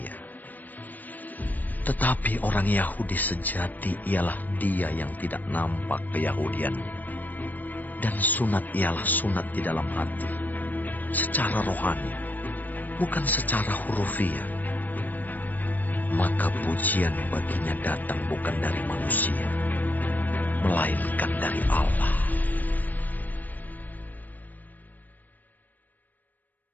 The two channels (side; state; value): right; late; 0.084 ms